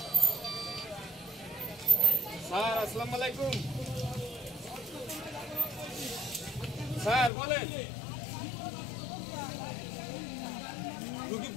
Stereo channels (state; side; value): drops out; right; at 7.3 s